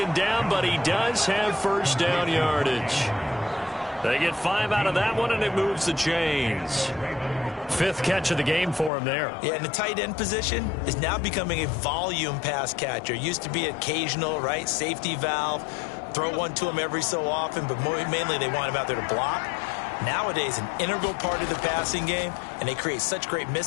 down, but he does have first down yardage. They get 5 out of that one, and it moves the chains. 5th catch of the game for him there. Yeah, and the tight end position is now becoming a volume pass catcher. Used to be occasional, right? Safety valve. Throw one to him every so often, but mainly they want him out there to block. Nowadays, an integral part of the passing game, and they create such great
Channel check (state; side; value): drops out; right; at 8.9 s